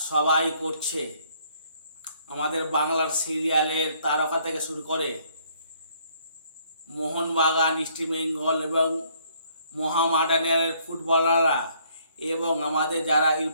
সবাই করছে। আমাদের বাংলার সিরিয়ালের তারকা থেকে শুরু করে মোহনবাগান, ইস্টবেঙ্গল এবং মোহামেডানের ফুটবলাররা এবং আমাদের যারা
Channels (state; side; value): inverted; both; correlation -0.65